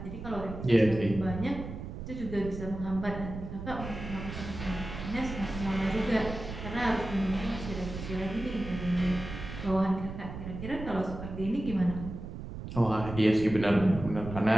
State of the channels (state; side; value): noise; right; rumble, 9 dB below the sound